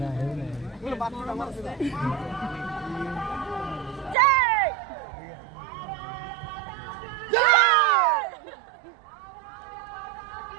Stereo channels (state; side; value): drops out; left; at 4.2 s